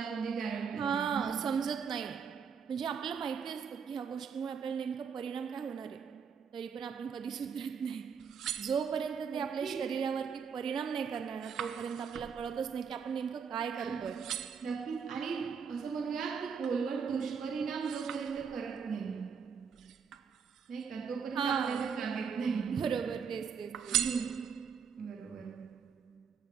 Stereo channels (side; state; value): left; quieter; 6.5 dB